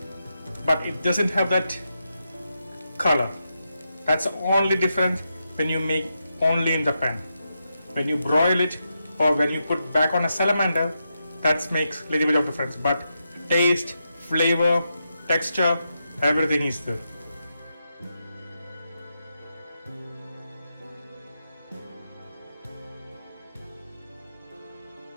but it doesn't have that color. That's the only difference when you make only in the pan. When you broil it or when you put back on a salamander, that makes a little bit of difference. But taste, flavor, texture, everything is there.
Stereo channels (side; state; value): both; inverted; correlation -0.85